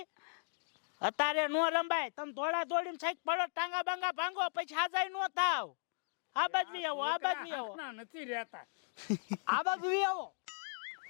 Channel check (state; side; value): silent; right; digital silence